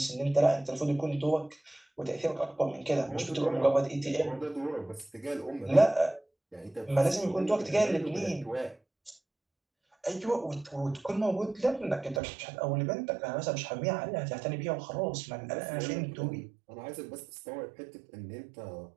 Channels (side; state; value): left; drops out; at 12.2 s